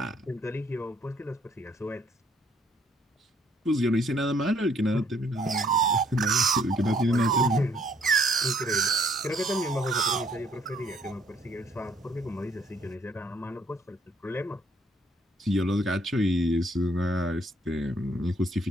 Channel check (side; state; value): both; normal; correlation 0.65